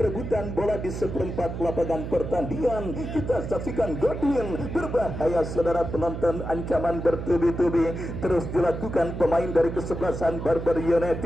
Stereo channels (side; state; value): right; noise; hum, 6 dB below the sound